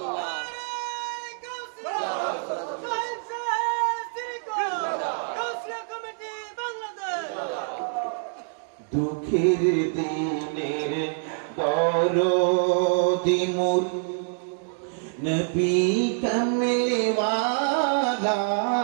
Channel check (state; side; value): silent; left; digital silence